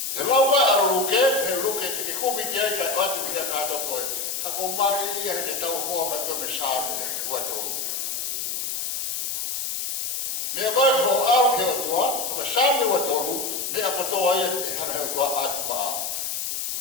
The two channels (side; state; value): left; noise; hiss, 2 dB below the sound